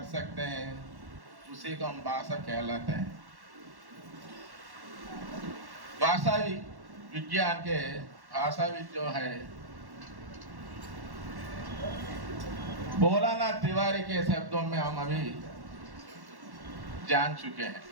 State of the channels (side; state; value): left; late; 1.1 ms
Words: सकते हैं उसी को हम भाषा कहलाते हैं। भाषा विज्ञान के भाषाविद जो है भोलानाथ तिवारी के शब्दों में हम अभी जान चुके हैं।